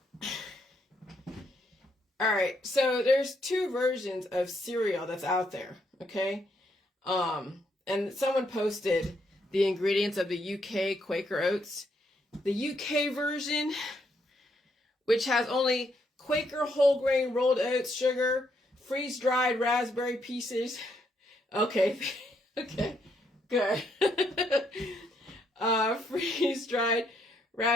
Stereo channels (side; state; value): both; normal; correlation 0.75